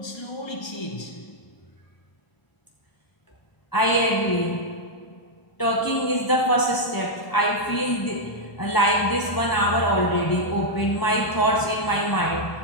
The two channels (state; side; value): late; right; 1.0 ms